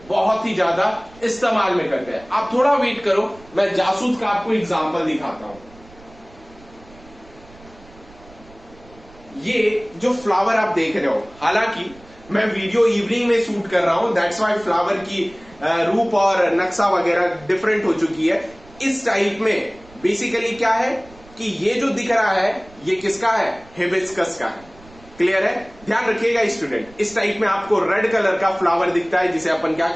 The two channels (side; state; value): right; noise; rumble, 24 dB below the sound